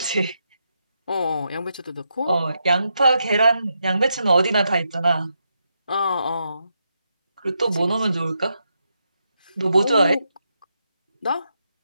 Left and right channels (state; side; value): inverted; both; correlation -0.83